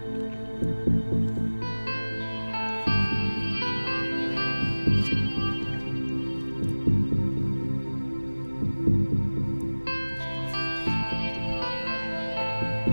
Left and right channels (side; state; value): both; inverted; correlation -1.00